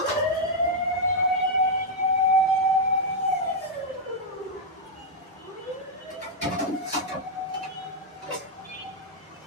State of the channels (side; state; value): both; normal; correlation -0.03